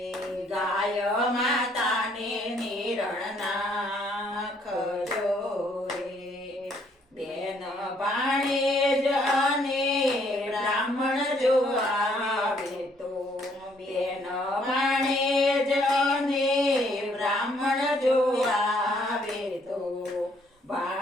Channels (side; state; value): both; normal; correlation 0.67